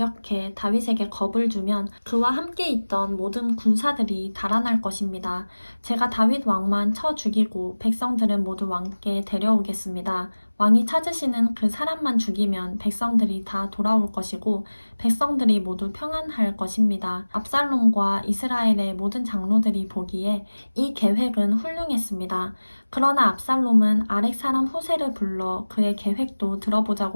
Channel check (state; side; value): inverted; both; correlation -1.00